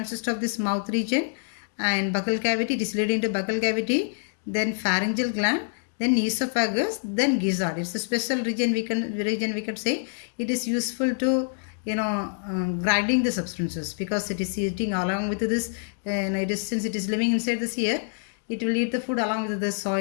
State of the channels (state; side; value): silent; right; digital silence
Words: of this mouth region and buccal cavity. It is leading to buccal cavity. Then pharyngeal gland. Then esophagus, then gizzard. It's a special region we can say. It is useful to grinding the substances, because it is eating along with this, and since it is living inside this ear, it will eat the food along with the